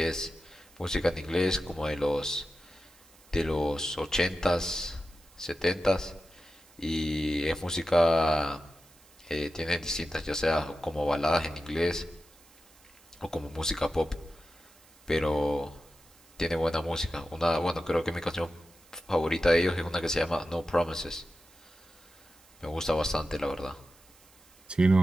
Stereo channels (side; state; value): right; noise; hiss, 27 dB below the sound